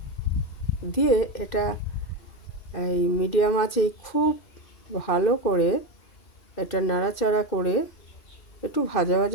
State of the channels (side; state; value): right; late; 2.5 ms